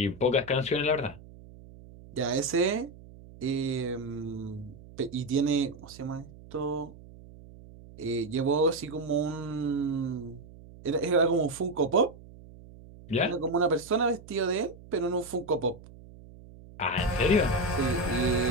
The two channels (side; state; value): right; noise; hum, 19 dB below the sound